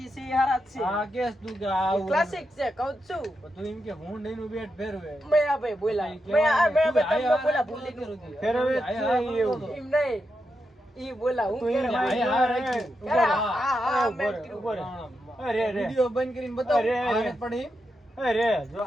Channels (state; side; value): normal; both; correlation 0.86